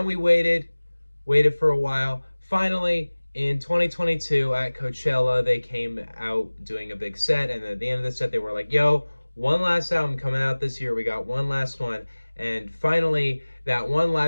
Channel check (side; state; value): both; inverted; correlation -1.00